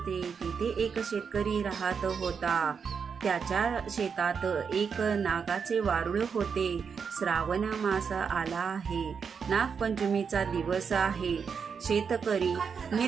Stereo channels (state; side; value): quieter; left; 6.2 dB